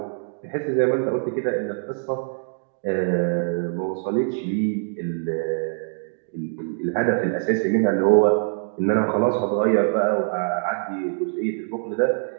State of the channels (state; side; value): silent; left; digital silence